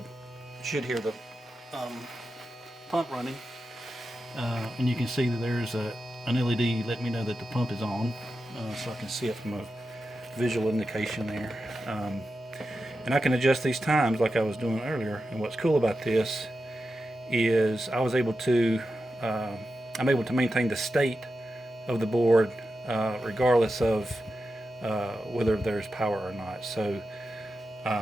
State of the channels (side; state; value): both; normal; correlation 0.90